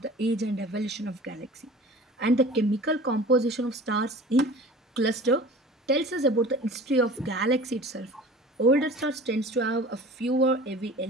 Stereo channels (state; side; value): normal; both; correlation 0.42